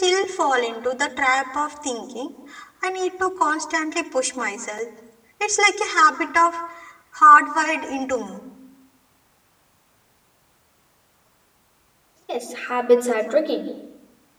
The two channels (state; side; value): identical; both; correlation 1.00